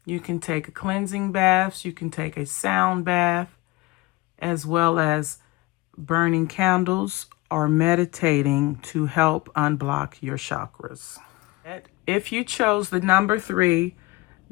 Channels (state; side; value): quieter; right; 22.0 dB